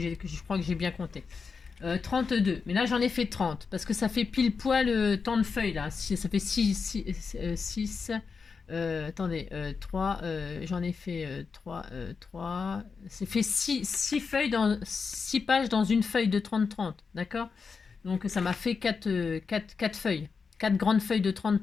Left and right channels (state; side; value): quieter; right; 5.2 dB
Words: j'ai bien compté. 32. Mais là, j'en ai fait 30. Parce que ça fait pile poil tant de feuilles, là. Ça fait 6 attendez, 3, j'en ai fait 3. Ça fait 6 feuilles 6 pages dans une feuille de 30-30. D'accord. Donc, ça m'a fait 4 feuilles. 4 grandes feuilles de